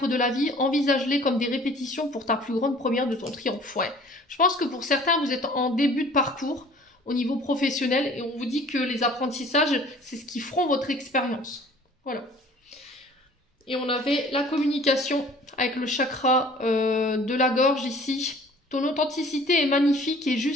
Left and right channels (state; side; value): normal; both; correlation 0.50